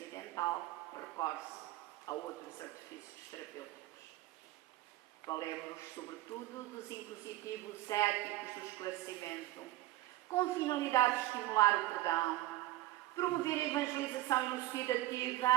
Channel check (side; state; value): left; quieter; 16.0 dB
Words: recorre-se a outros artifícios terapêuticos. Valemos-nos, sobretudo, dos impositivos éticos do esclarecimento, com finalidade de estimular o perdão, promover a evangelização